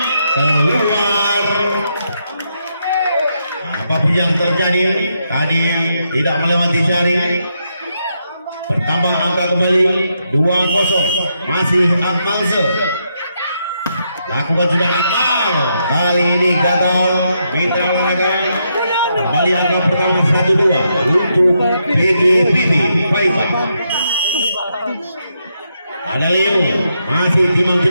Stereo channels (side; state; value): both; inverted; correlation -0.80